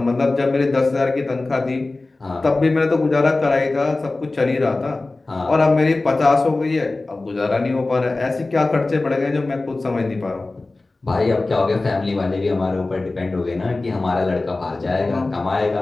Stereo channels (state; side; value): quieter; right; 3.2 dB